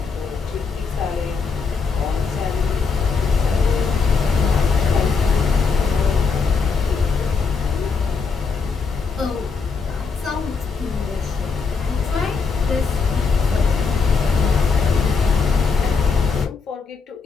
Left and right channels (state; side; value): quieter; right; 5.0 dB